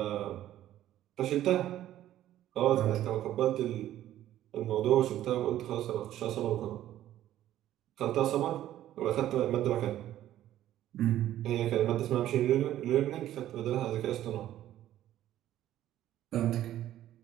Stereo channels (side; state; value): left; quieter; 12.8 dB